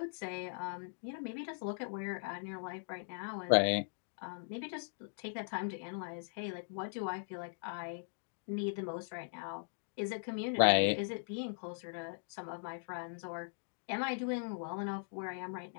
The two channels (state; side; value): silent; right; digital silence